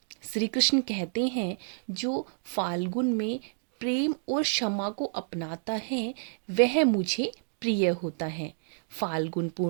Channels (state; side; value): silent; left; digital silence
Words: श्री कृष्ण कहते हैं, जो फाल्गुन में प्रेम और क्षमा को अपनाता है वह मुझे प्रिय होता है। फाल्गुन